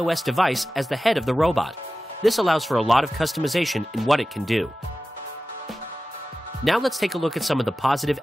device as the head of the robot. This allows for a lot of customization in what it can do. Now let's take a look at some of the positive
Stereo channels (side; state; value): both; normal; correlation 0.95